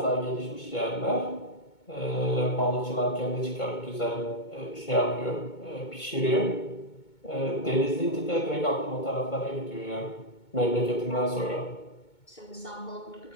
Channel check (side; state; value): right; late; 2.2 ms